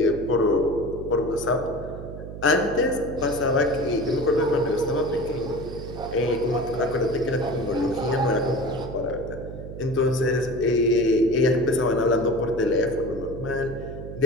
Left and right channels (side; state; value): right; noise; hum, 10 dB below the sound